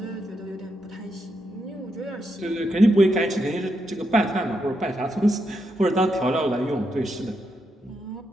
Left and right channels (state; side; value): normal; both; correlation 0.82